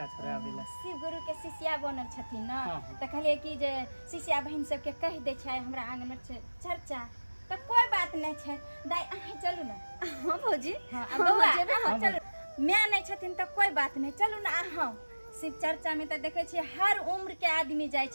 छोड़ावे ला शिव गुरु के शिष्या बनल छथिन ना हाँ। तो कहलिए कि जे शिष्या बहन सबके कह दे छै हमरा आंगन में छै चर्चा तो कोई बात नहीं छै दाई अहीं चलू ना हाँ भौजी हाँ बउआ जेबे अहाँ चलू मैं नहीं छथिन तो कोई बात नहीं चलू ना अहाँ शिव चर्चा में तो देखे छियै हर उम्र के आदमी जाय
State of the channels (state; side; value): inverted; both; correlation -1.00